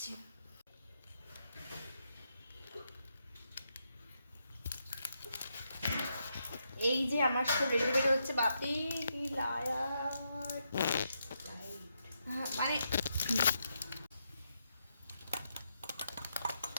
এই যে আমার সব রেডি রেডি হচ্ছে। বাপি মানে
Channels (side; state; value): both; inverted; correlation -0.81